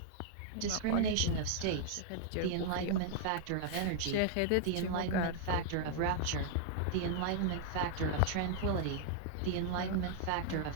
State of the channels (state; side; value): different; both; correlation -0.01